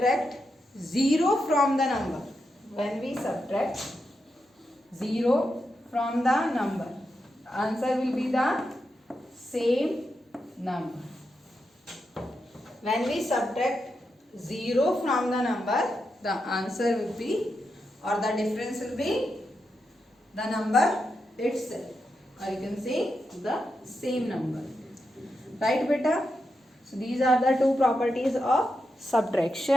0 from the number, when we subtract 0 from the number, the answer will be the same number. When we subtract 0 from the number, the answer will be, or the difference will be the number itself, or you can say the same number. Right beta? So these are the two properties of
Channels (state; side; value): normal; both; correlation 0.86